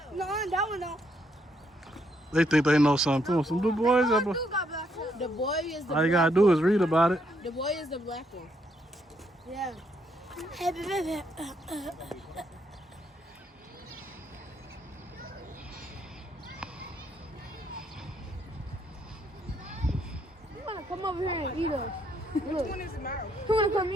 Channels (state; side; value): normal; both; correlation 0.74